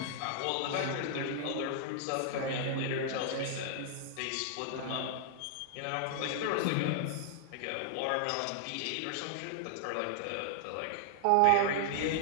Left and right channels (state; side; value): different; both; correlation 0.00